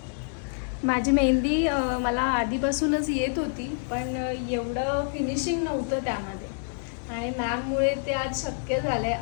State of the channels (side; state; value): right; silent; digital silence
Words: माझी मेहंदी मला आधीपासूनच येत होती, पण एवढं फिनिशिंग नव्हतं त्यामध्ये. आणि मॅममुळे ते आज शक्य झालं